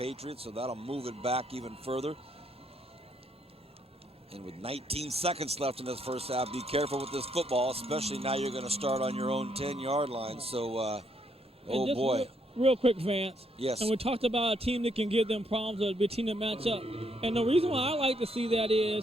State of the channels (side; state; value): both; normal; correlation 0.73